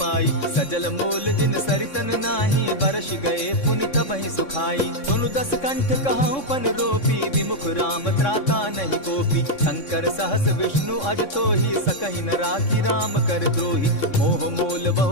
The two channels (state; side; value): late; right; 3.6 ms